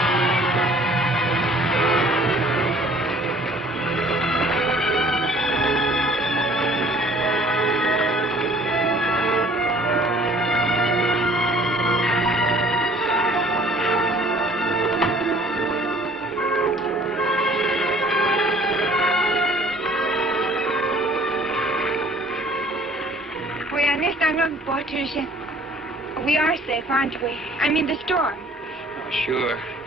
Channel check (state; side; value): normal; both; correlation 0.54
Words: We are next on the Patricia. We are safe, aren't we? I'm in the storm. Oh, sure.